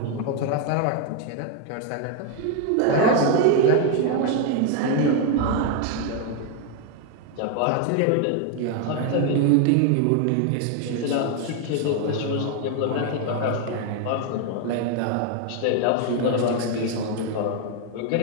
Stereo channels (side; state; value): both; different; correlation 0.01